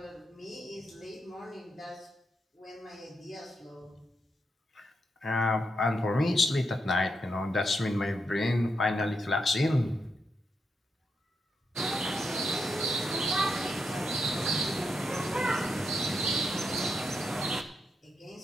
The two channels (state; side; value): normal; both; correlation 0.83